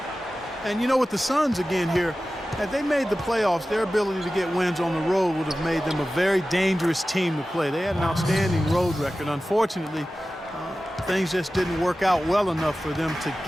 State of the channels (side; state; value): both; normal; correlation 0.95